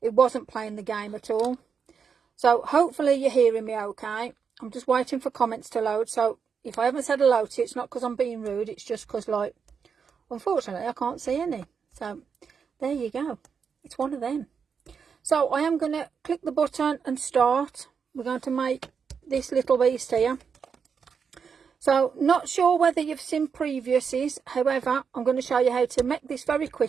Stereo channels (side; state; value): left; quieter; 6.3 dB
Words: It wasn't playing the game at all. So hopefully you're hearing me okay. I'm just waiting for comments to load. So if I haven't said hello to you, it's not because I'm being rude. It's just because, unfortunately, I can't see any. So there you go. It's one of them. So I am going to click the button and start. We're going to make this little beast here. So not sure whether you've seen previously, however I'm going to show you how to make this very